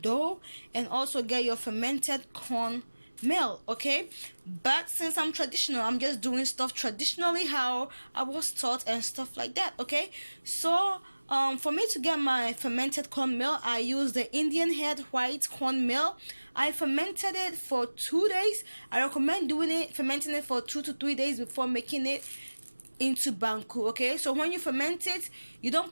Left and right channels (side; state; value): both; inverted; correlation -1.00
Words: dough, and also get your fermented corn meal. Okay, but since I'm traditional, I'm just doing stuff traditionally how I was taught and stuff like that. Okay, so for me to get my fermented corn meal, I use the Indian head white corn meal. I fermented it for 2 days. I recommend fermenting it for 2 to 3 days before making it into banku. Okay, so when you ferment it, you don't